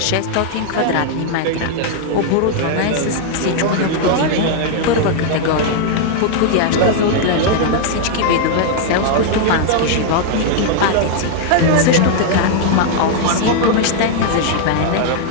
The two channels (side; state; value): both; different; correlation -0.01